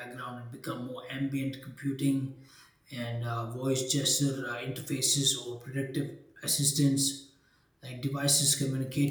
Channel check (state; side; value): identical; both; correlation 1.00